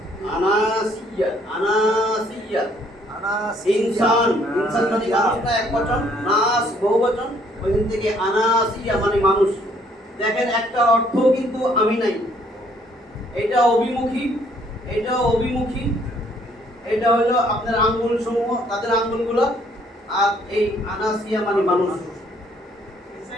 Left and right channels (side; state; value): both; normal; correlation 0.64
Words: আনাসিয়া, আনাসিয়া, ইনসান, ইনসান মানে মানুষ না একবচন, নাস বহুবচন, ওইখান থেকে আনাসিয়া মানে মানুষ। দেখেন একটা অর্থ কিন্তু আমি নাই, এটা অভিমুখী, এটা অভিমুখী, এটা হলো আপনার আঙ্গুল সমূহ, তাদের আঙ্গুলগুলো, আর এই আনাসিয়া মানে মানুষ।